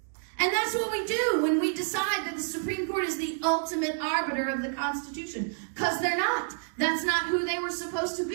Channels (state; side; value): silent; left; 59 dB below the other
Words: that's what we do when we decide that the Supreme Court is the ultimate arbiter of the Constitution. Because they're not. That's not who they were supposed to